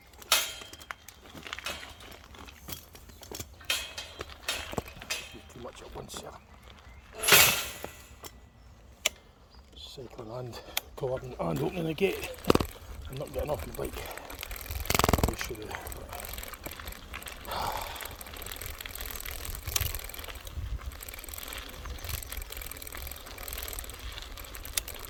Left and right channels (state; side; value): identical; both; correlation 1.00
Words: Too much at once here. Cycling and cordon and opening the gate. I'm not getting off my bike. I should have.